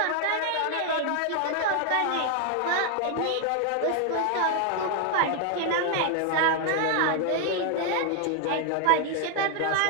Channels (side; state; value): both; different; correlation 0.00